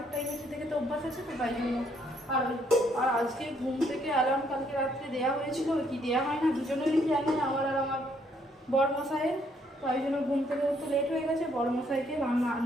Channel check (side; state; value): both; normal; correlation 0.69